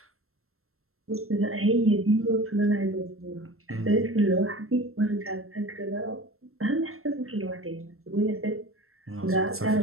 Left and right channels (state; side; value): late; left; 0.62 ms